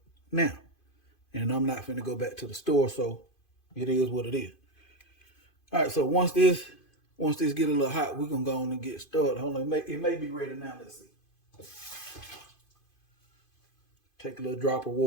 now. And I'm not finna go back to the store, so it is what it is. All right, so once this get a little hot, we're gonna go on and get started. Hold on, it may be ready now. Let's see. Take a little drop of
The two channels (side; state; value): right; late; 2.5 ms